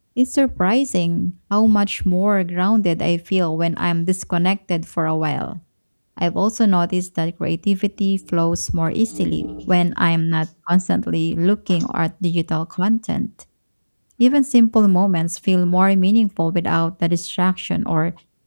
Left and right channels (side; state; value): both; inverted; correlation -1.00